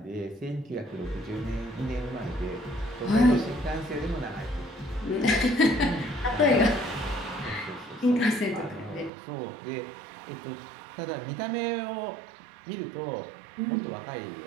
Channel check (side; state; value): left; drops out; at 9.1 s